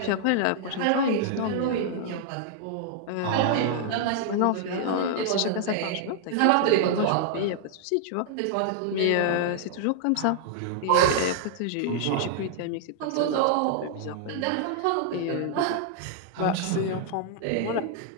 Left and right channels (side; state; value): both; different; correlation -0.01